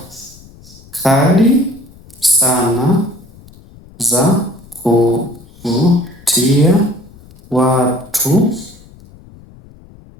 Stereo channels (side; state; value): left; noise; rumble, 23 dB below the sound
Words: kali sana za kuvutia watu